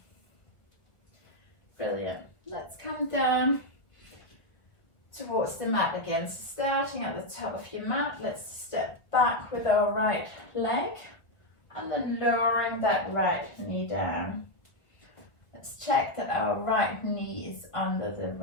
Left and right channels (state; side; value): late; right; 1.3 ms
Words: Brilliant. Let's come down towards the mat again. So starting at the top of your mat, let's step back with our right leg and then lowering that right knee down. Let's check that our right knee is under the